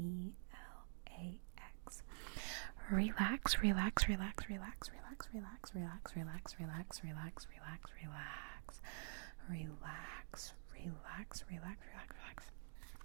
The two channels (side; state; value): left; silent; digital silence